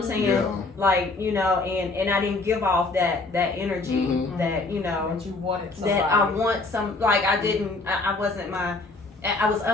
saying? Yeah. Like and I didn't give off that energy Mhm. that That you wanted somebody. that I want some like I didn't I wasn't I was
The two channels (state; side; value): quieter; right; 3.4 dB